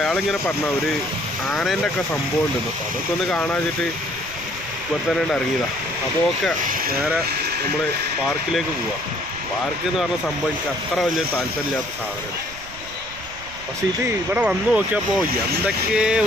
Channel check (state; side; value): noise; right; rumble, 17 dB below the sound